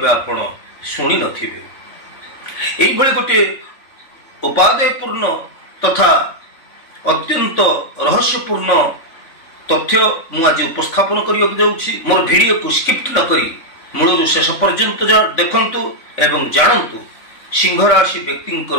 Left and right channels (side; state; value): right; late; 3.5 ms